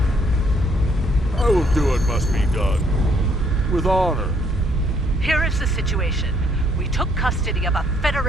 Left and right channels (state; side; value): normal; both; correlation 0.67